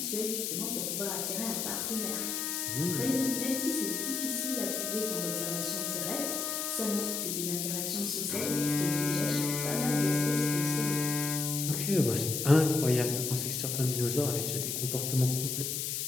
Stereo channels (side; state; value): left; noise; hiss, 1 dB below the sound